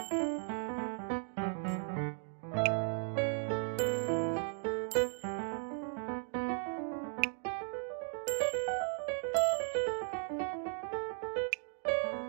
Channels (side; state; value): left; silent; 53 dB below the other